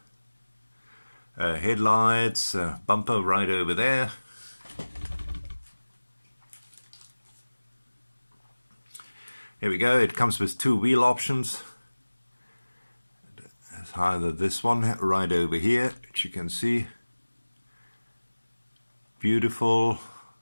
Headlights, bumper right over there. Here we go. It comes with two wheel options. It's either this one right over here, which you can see. Beautiful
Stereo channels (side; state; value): both; inverted; correlation -1.00